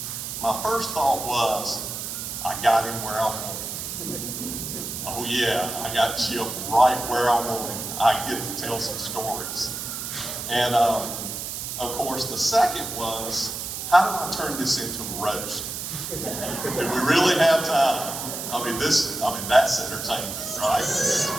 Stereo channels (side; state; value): right; noise; hiss, 6 dB below the sound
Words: My first thought was, I got him where I want him. Oh yeah, I got Chip right where I want him. I get to tell some stories. And of course, the second was, how do I turn this into a roast? Do we really have time? I mean, that's entertainment,